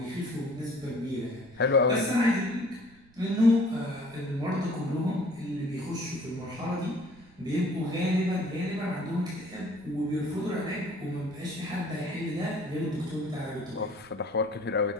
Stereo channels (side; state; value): right; noise; rumble, 27 dB below the sound